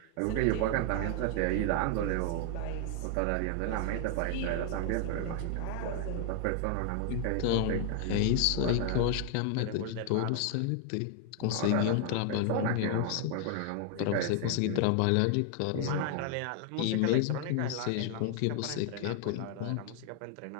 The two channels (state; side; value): different; both; correlation 0.00